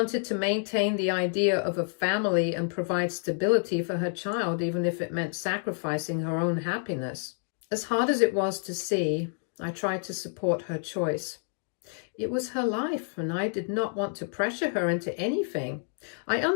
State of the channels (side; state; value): right; silent; 59 dB below the other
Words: to maintain the idea of a family and provide stability for her child, even if it meant sacrificing her own happiness. As hard as it was to see, I tried to support her choice. It was her life, and I did not want to pressure her into anything. I